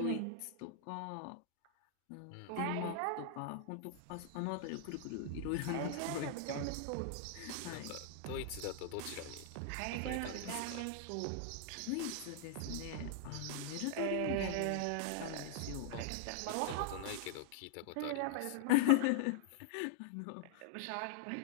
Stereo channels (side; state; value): both; different; correlation -0.01